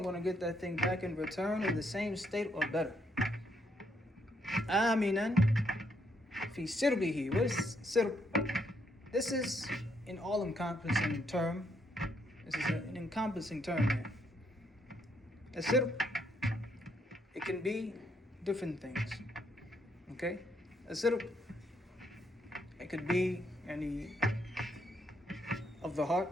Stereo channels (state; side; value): normal; both; correlation 0.74